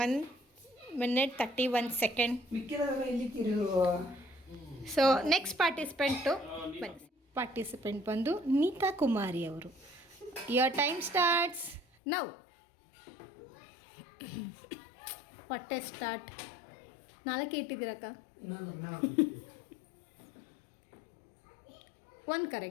1 minute 31 seconds. ಮಿಕ್ಕಿದವರೆಲ್ಲ ಎಲ್ಲಿದ್ದೀರಿ? ಸೊ ನೆಕ್ಸ್ಟ್ ಪಾರ್ಟಿಸಿಪೆಂಟ್ ಬಂದು ನೀತಾ ಕುಮಾರಿ ಅವರು. Your time starts now. ಹೊಟ್ಟೆ ಸ್ಟಾರ್ಟ್. 4 ಇಟ್ಟಿದ್ದೀರಕ್ಕ. One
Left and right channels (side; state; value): right; drops out; at 11.9 s